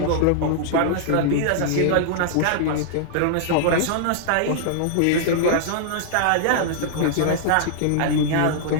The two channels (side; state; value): both; different; correlation -0.01